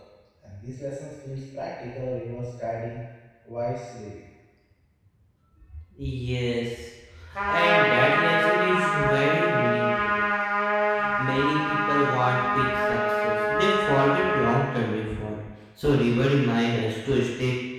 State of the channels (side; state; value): both; identical; correlation 1.00